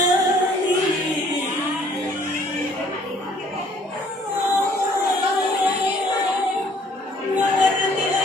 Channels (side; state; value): both; normal; correlation 0.59